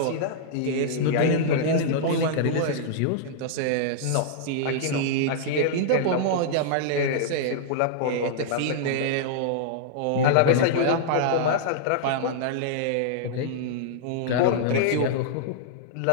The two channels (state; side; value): different; both; correlation -0.02